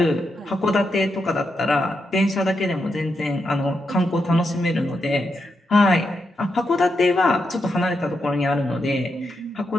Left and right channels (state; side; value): normal; both; correlation 0.84